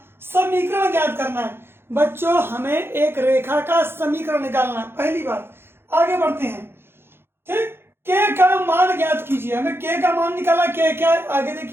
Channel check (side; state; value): left; late; 0.11 ms